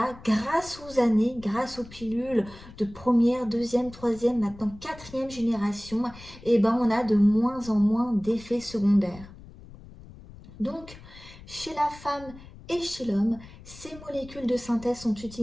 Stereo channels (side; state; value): left; noise; rumble, 18 dB below the sound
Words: grâce aux années, grâce aux pilules de première, deuxième, troisième, maintenant quatrième génération, et ben on a de moins en moins d'effets secondaires. Donc, chez la femme et chez l'homme, ces molécules de synthèse sont